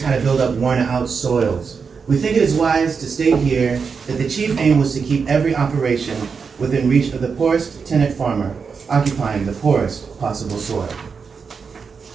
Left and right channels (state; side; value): quieter; left; 5.6 dB